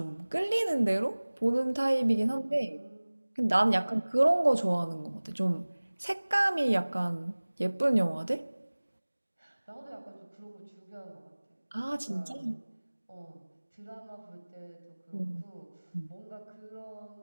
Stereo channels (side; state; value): both; inverted; correlation -1.00